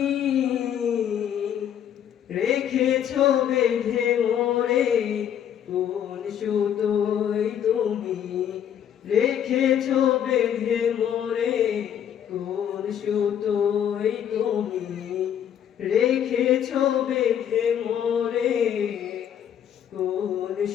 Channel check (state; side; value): quieter; right; 9.5 dB